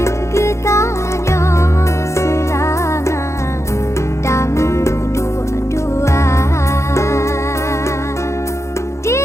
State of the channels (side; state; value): right; late; 0.14 ms